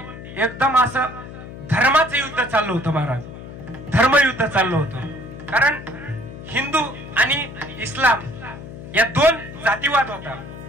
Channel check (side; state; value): left; noise; hum, 13 dB below the sound